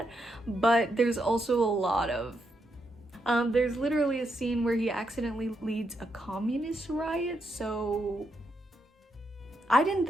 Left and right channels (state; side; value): normal; both; correlation 0.81